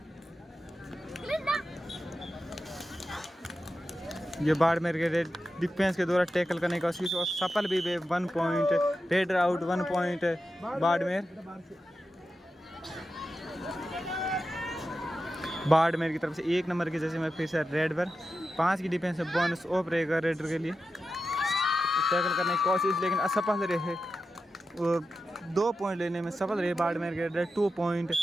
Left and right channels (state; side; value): normal; both; correlation 0.91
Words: ये बाड़मेर के रेड डिफेंस के द्वारा टैकल करने की कोशिश और सफल भी हुए 1 point raider out 1 point Barmer. Barmer की तरफ से 1 नंबर की जर्सी में फिर से रेड पर 5 की डिफेंस में बोनस ऑफ रहेगा रेडर के लिए। टैकल करने की कोशिश लेकिन असफल रहे और 2 पॉइंट लेने में सफल रहे बाड़मेर के रेडर 2 पॉइंट